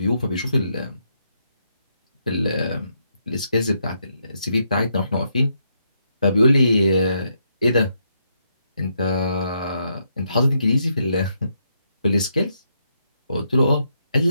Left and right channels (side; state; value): both; inverted; correlation -0.78